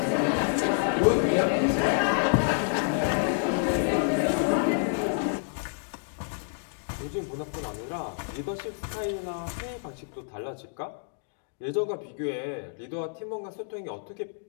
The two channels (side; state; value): right; silent; digital silence